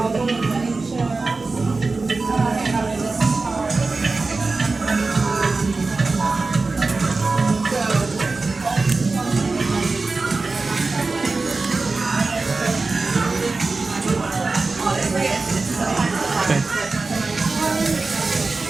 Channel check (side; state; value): left; quieter; 3.8 dB